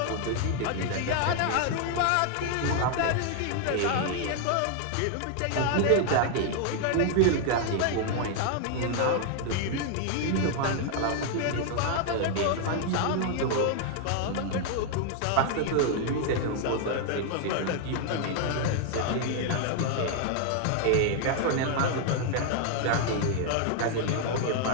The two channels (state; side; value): different; both; correlation 0.00